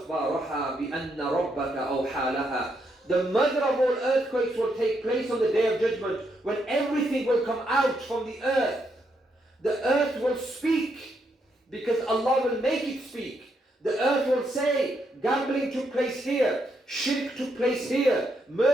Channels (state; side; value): normal; both; correlation 0.78